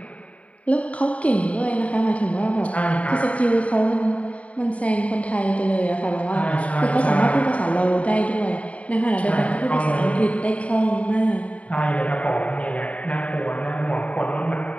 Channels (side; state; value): right; late; 0.066 ms